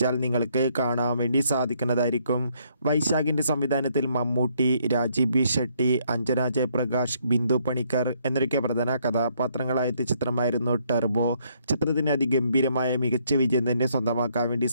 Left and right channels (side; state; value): both; inverted; correlation -0.70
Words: നിങ്ങൾക്ക് കാണാൻ വേണ്ടി സാധിക്കുന്നതായിരിക്കും. വൈശാഖിൻ്റെ സംവിധാനത്തിൽ മമ്മൂട്ടി, രാജീവ് ബി ഷെട്ടി, അഞ്ജന ജയപ്രകാശ്, ബിന്ദു പണിക്കർ എന്നൊക്കെ പ്രധാന കഥാപാത്രങ്ങളായ ചിത്രമായിരുന്നു ടർബോ. ചിത്രത്തിന് അതിഗംഭീരമായ മികച്ച വിജയം തന്നെ സ്വന്തമാക്കാൻ വേണ്ടി